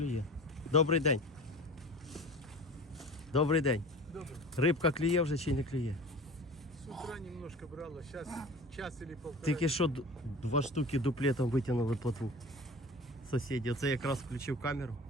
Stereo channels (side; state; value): both; normal; correlation 0.38